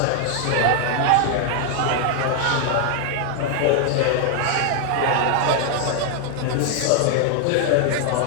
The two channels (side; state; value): both; different; correlation 0.00